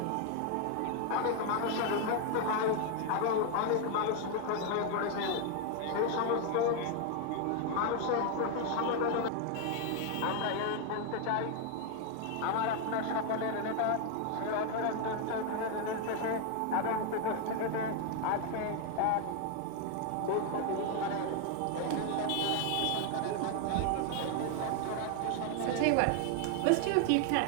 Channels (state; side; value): different; both; correlation 0.00